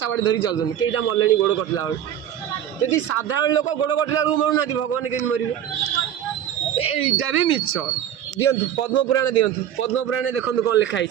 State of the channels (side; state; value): left; quieter; 10.4 dB